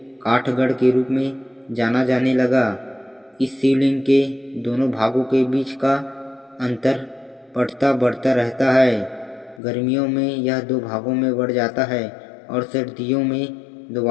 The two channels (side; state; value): right; drops out; at 9.6 s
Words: काठगढ़ के रूप में जाना जाने लगा। इस शिवलिंग के दोनों भागों के बीच का अंतर बढ़ता बढ़ता रहता है। गर्मियों में यह दो भागों में बढ़ जाता है और सर्दियों में